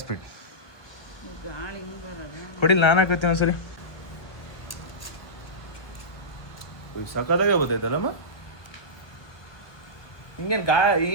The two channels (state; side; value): late; right; 1.3 ms